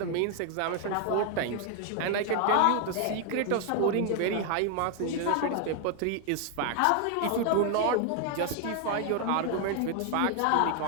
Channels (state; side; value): different; both; correlation 0.00